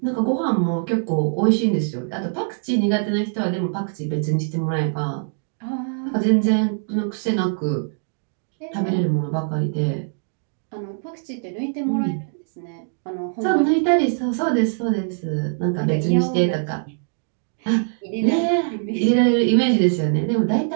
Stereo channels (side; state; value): left; silent; digital silence